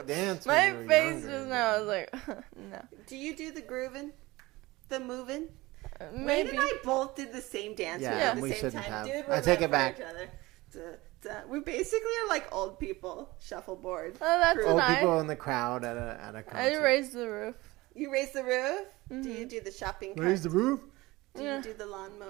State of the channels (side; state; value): left; quieter; 20.5 dB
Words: dance. My when you were face younger. just now. I was like, no. do you do the grooving, the moving? Wayne Maybe. and I both did the same dance Yeah, at the we same shouldn't time. have. Dude, I we're take meant it for back. each other. We basically are like old people shuffleboard. Oh, that's Crew. Old nice. people in the crowd at a concert. I raised the roof. You raise the roof? Do you do the shopping cart? Raise the roof. Do Yeah. you do the